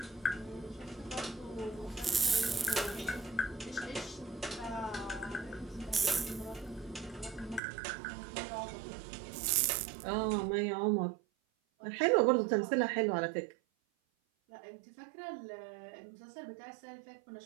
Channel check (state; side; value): drops out; left; at 7.6 s